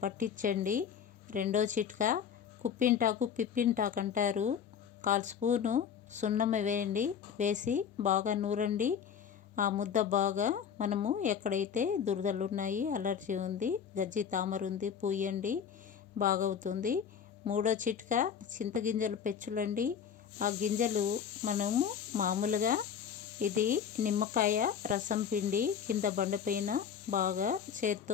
పట్టించండి. రెండో చిట్కా కుప్పింటాకు, పిప్పింటాకు అంటారు. 1/4 స్పూను సున్నం వేయండి, వేసి బాగా నూరండి. ఆ ముద్ద బాగా మనము ఎక్కడైతే దురదలు ఉన్నాయి, అలర్జీ ఉంది, గజ్జి తామర ఉంది, పూయండి, బాగవుతుంది. మూడో చిట్కా చింతగింజలు పెచ్చులండి. ఆ గింజలు మనము మామూలుగా ఇది నిమ్మకాయ రసం పిండి కింద బండపైన బాగా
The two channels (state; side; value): quieter; right; 7.8 dB